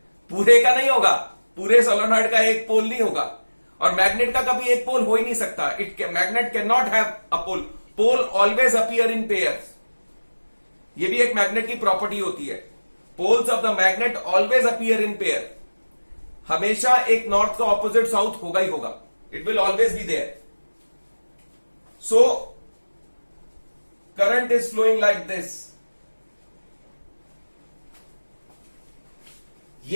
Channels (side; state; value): both; inverted; correlation -1.00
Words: पूरे का नहीं होगा, पूरे सोलेनॉइड का एक पोल नहीं होगा, और मैग्नेट का कभी एक पोल हो ही नहीं सकता. Magnet can not have a pole. Pole always appear in pairs. ये भी एक मैग्नेट की प्रॉपर्टी होती है. Poles of the magnet always appear in pair. हमेशा एक नॉर्थ का ऑपोजिट साउथ होगा ही होगा. It will always be there. So current is flowing like this.